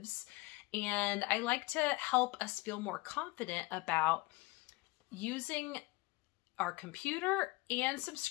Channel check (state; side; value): quieter; right; 22.8 dB